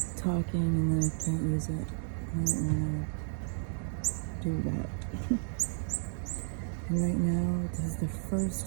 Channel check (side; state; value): left; silent; 56 dB below the other